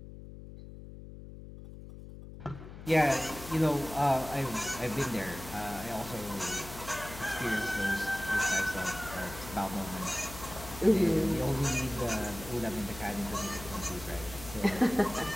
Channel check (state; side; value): noise; left; hum, 13 dB below the sound